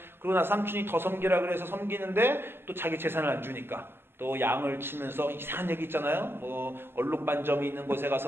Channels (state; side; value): late; left; 0.11 ms